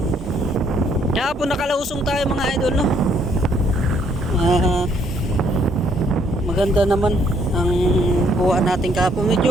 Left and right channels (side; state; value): both; normal; correlation 0.67